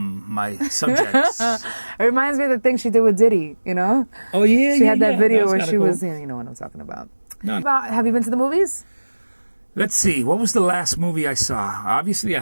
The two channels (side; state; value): both; inverted; correlation -1.00